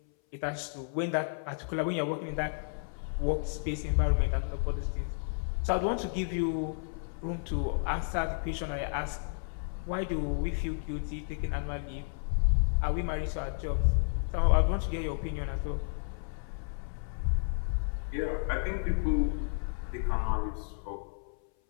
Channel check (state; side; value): silent; right; 57 dB below the other